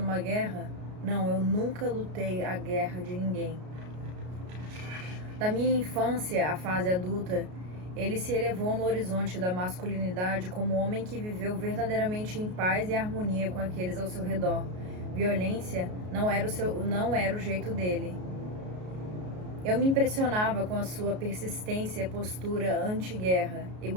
guerra? Não, eu nunca lutei a guerra de ninguém. Da minha infância à fase adulta, ele se elevou no horizonte da masculinidade como homem que viveu verdadeiramente em paz e harmonia com aqueles ao seu redor. Violência não era o jeito dele. Eu me impressionava com a sua persistência e postura anti-guerra,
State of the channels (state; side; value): late; left; 33 ms